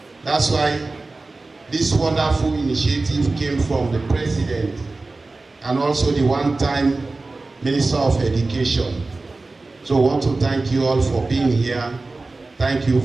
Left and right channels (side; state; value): left; quieter; 3.4 dB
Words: That's why this wonderful initiative came from the President and also the one-time Minister of Education. So I want to thank you all for being here. Thank you